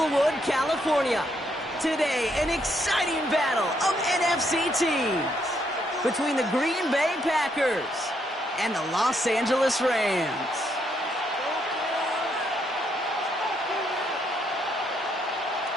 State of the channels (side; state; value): both; normal; correlation 0.74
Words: California. Today, an exciting battle of NFC teams between the Green Bay Packers and the Los Angeles Rams.